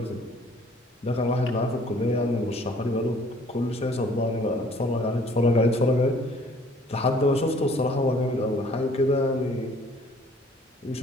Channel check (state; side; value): normal; both; correlation 0.56